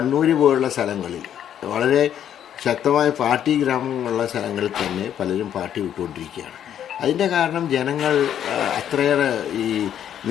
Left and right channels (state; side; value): quieter; right; 9.9 dB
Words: പോലുള്ള സ്ഥലങ്ങളിൽ, വളരെ ശക്തമായ പാർട്ടി ഗ്രാമങ്ങളുള്ള സ്ഥലങ്ങളിൽ തന്നെ പലരും പാർട്ടി വിട്ടുകൊണ്ടിരിക്കുകയാണ്. അതിൻ്റെ കാരണം ജനങ്ങൾ അത്രയേറെ ഈ